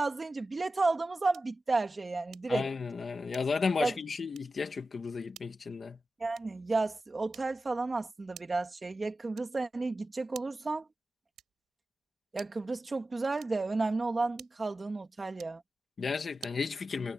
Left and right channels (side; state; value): both; normal; correlation 0.93